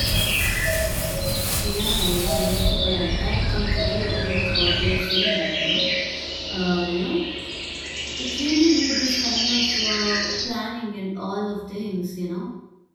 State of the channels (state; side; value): identical; both; correlation 1.00